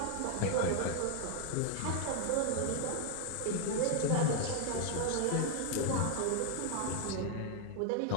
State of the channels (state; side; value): different; both; correlation 0.00